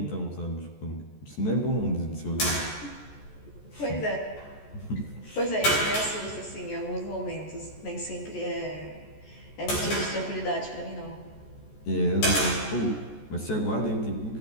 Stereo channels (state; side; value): late; right; 14 ms